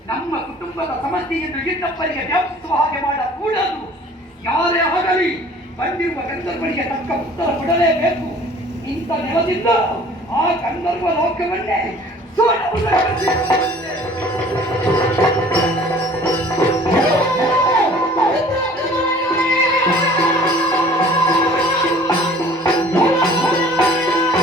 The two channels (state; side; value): normal; both; correlation 0.50